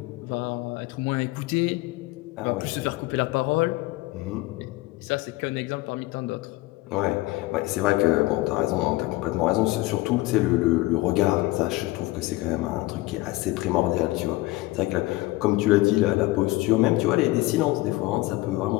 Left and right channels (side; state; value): right; quieter; 19.8 dB